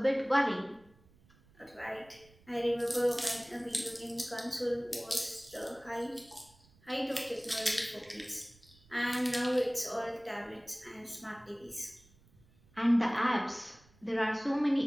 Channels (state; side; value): noise; right; rumble, 29 dB below the sound